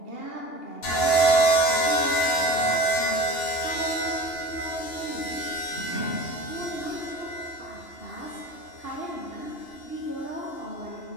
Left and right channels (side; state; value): right; late; 2.8 ms